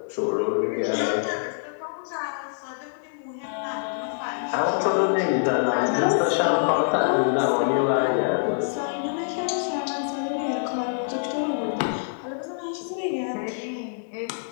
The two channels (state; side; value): silent; right; digital silence